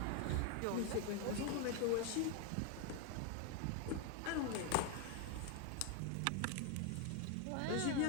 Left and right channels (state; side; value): different; both; correlation 0.01